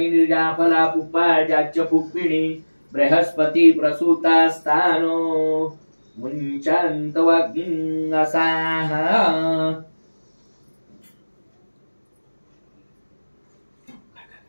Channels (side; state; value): both; inverted; correlation -1.00